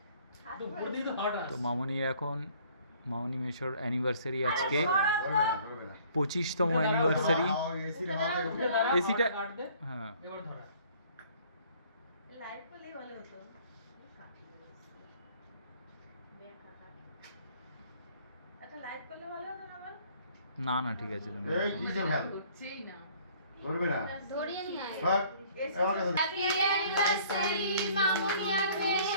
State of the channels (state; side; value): inverted; both; correlation -0.57